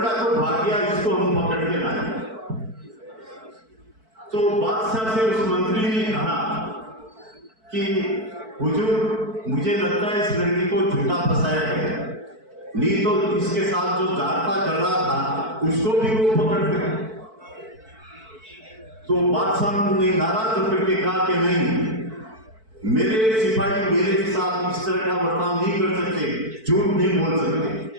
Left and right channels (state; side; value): late; left; 4.5 ms